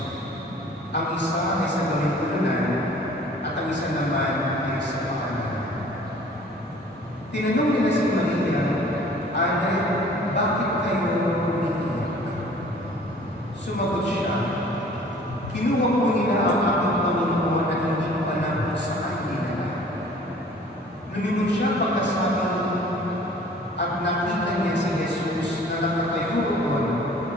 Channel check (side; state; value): both; normal; correlation 0.51